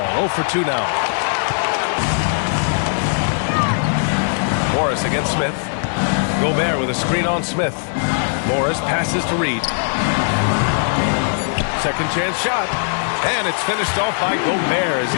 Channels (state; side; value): silent; right; digital silence